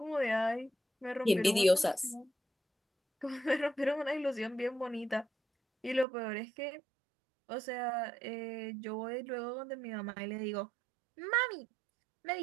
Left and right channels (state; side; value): drops out; left; at 6.1 s